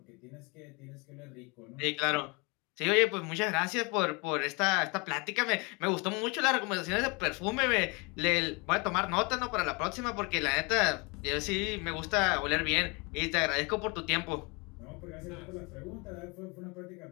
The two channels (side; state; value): right; quieter; 29.3 dB